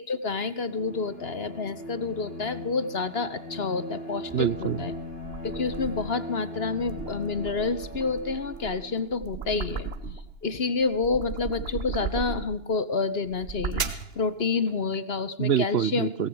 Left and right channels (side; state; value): right; late; 2.9 ms